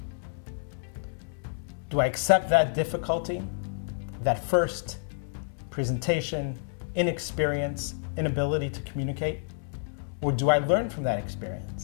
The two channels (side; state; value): right; silent; 59 dB below the other